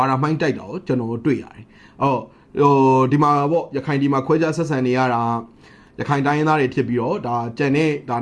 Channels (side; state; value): both; identical; correlation 1.00